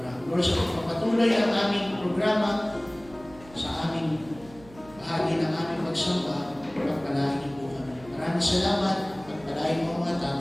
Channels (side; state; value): right; noise; hum, 21 dB below the sound